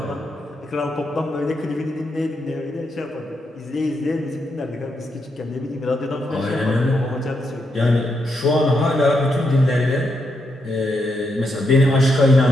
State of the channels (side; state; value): both; normal; correlation 0.81